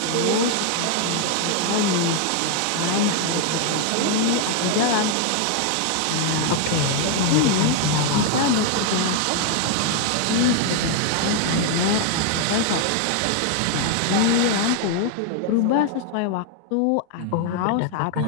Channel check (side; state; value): both; different; correlation 0.00